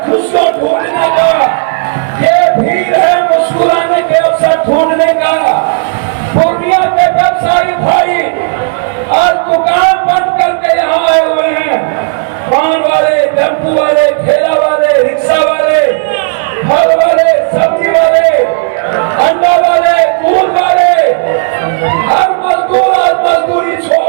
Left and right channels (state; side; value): silent; left; digital silence